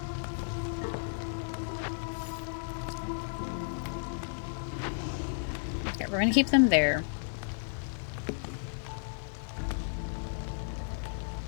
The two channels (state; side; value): silent; right; digital silence